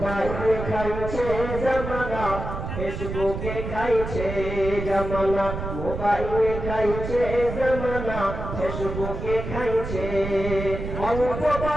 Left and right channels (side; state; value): right; noise; rumble, 6 dB below the sound